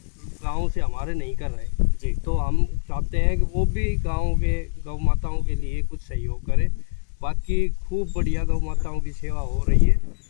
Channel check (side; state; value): right; silent; digital silence